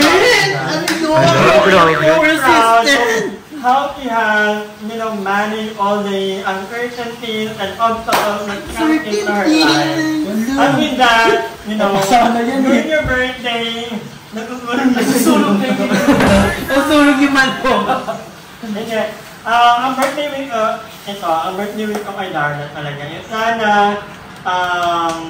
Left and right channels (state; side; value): identical; both; correlation 1.00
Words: How he has, you know, managed all the uncertainties and obstacles that come into her life. And with that, you know, during your birthday, nagsusulog na yun. Nasunog yung man po. Okay. Ang birthday week ang birthday week ko kay Darla talaga. Yung sana,